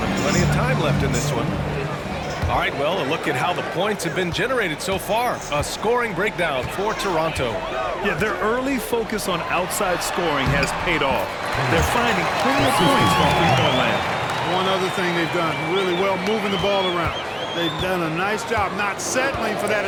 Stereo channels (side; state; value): both; identical; correlation 1.00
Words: Plenty of time left in this one. All right, well, a look at how the points have been generated so far. A scoring breakdown for Toronto. Yeah, their early focus on outside scoring has paid off. They're finding plenty of points from three-point land. One other thing they've done really well, moving the ball around. They've done a nice job not settling for that